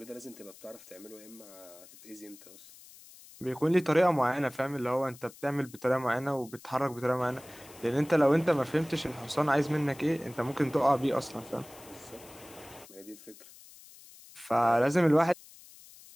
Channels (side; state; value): left; noise; hiss, 21 dB below the sound